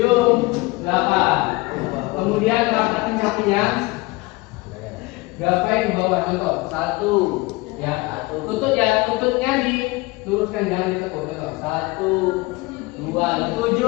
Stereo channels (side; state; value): right; quieter; 22.8 dB